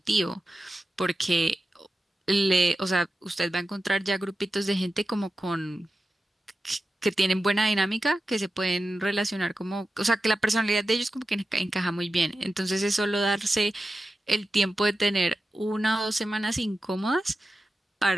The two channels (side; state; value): both; normal; correlation 0.92